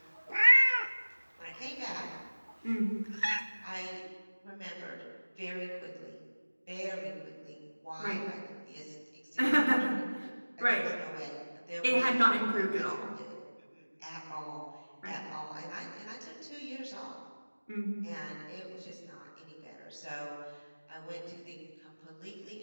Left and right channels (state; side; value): inverted; both; correlation -1.00